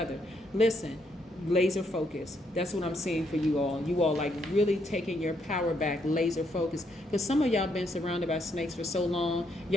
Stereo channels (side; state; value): both; normal; correlation 0.75